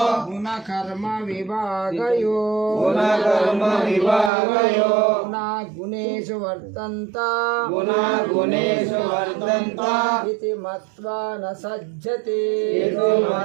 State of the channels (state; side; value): drops out; left; at 4.3 s